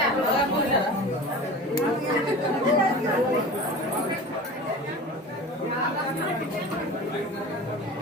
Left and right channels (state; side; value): normal; both; correlation 0.35